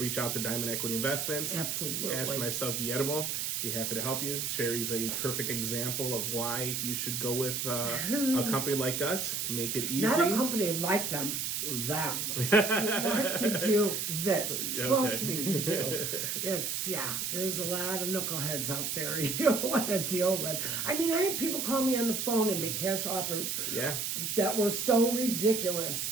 out to Diamond Equity Investments. Absolutely. Ask for myself, Guillermo. Be happy to help you. Sherry's a perfect example of why you should go with a company like us. Make it easy. Not a company like them. You want to do this. Trust me, you do. There's a lot of knuckleheads out there you don't want to deal with. I had people call me on the phone and make cash offers that were so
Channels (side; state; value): right; noise; hiss, 1 dB below the sound